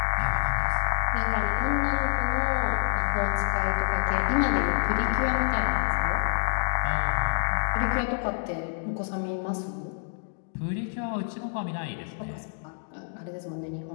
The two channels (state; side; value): silent; right; digital silence